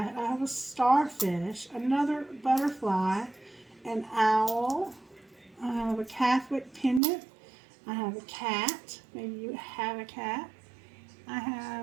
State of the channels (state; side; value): drops out; left; at 7.0 s